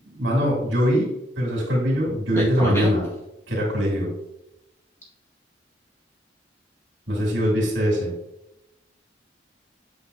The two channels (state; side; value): normal; both; correlation 0.76